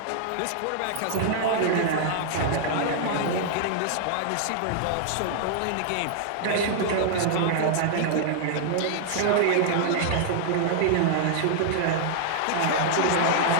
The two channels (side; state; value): both; different; correlation -0.01